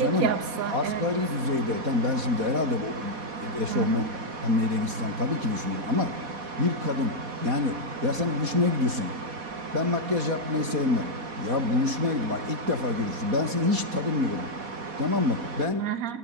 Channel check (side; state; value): left; late; 4.1 ms